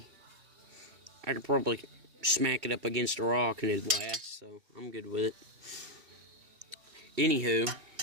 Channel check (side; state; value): left; late; 2.7 ms